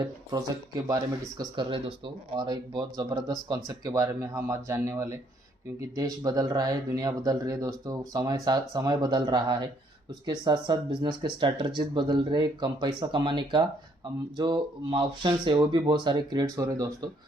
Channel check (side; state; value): both; normal; correlation 0.67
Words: प्रोजेक्ट के बारे में डिस्कस कर रहे हैं दोस्तों, और एक बहुत ज़बरदस्त कॉन्सेप्ट के बारे में हम आज जानने वाले, क्योंकि देश बदल रहा है, दुनिया बदल रही है दोस्तों, समय बदल रहा है। उसके साथ साथ बिजनेस के स्ट्रैटेजीज बदल रहे, कम पैसा कमाने का जो ऑप्शन है वो भी बहुत सारे क्रिएट्स हो रहे हैं दोस्तों।